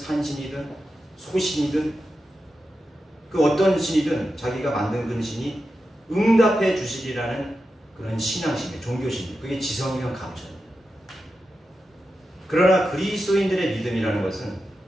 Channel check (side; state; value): both; normal; correlation 0.90